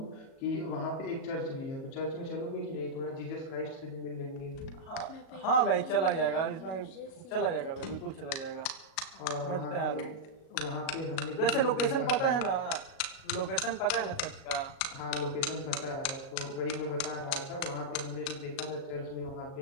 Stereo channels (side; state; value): right; late; 37 ms